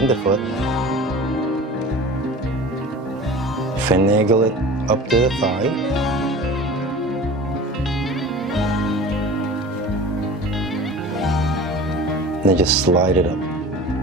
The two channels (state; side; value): normal; both; correlation 0.39